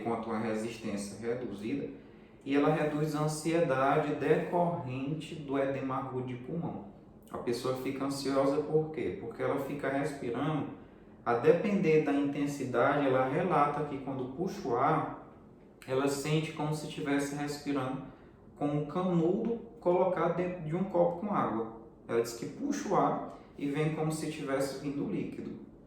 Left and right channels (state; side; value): identical; both; correlation 1.00